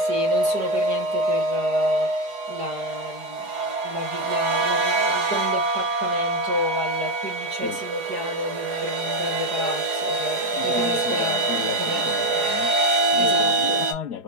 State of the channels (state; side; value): late; left; 4.8 ms